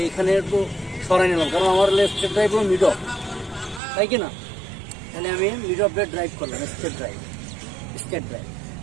এইখানে একটু সরাই নিলাম, কারণ আমার স্ট্রেট ড্রাইভ হলো মিড অফ, তাই কি না? তাহলে আমি মিড অফ ড্রাইভ করলাম, স্ট্রেট ড্রাইভ।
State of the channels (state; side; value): drops out; left; at 3.8 s